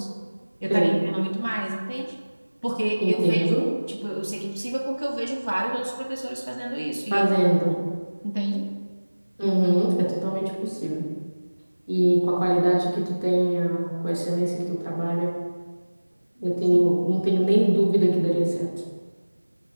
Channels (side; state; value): both; inverted; correlation -1.00